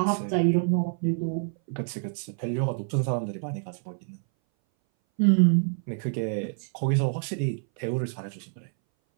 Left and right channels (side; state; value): left; silent; 59 dB below the other